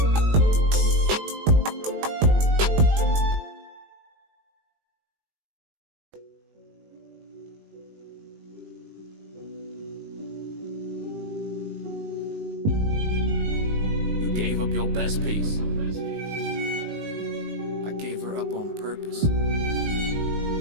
Gave up your best piece. I gave her up on purpose.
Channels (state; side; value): late; left; 19 ms